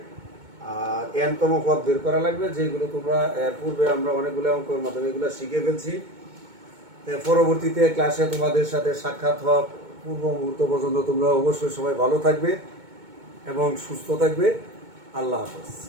আর n তম পদ বের করা লাগবে, যেগুলো তোমরা এর পূর্বে আমরা অনেকগুলো অঙ্কের মাধ্যমে এগুলো শিখে ফেলছি। পরবর্তীতে ক্লাসে তোমাদের সাথে সাক্ষাৎ হওয়া পূর্ব মুহূর্ত পর্যন্ত তোমরা অবশ্যই সবাই ভালো থাকবে এবং সুস্থ থাকবে। আল্লাহ হাফেজ।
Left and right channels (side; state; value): left; late; 2.2 ms